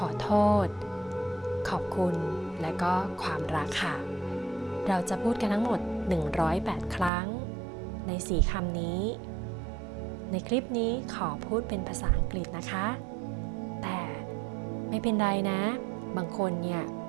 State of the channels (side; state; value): left; drops out; at 7.1 s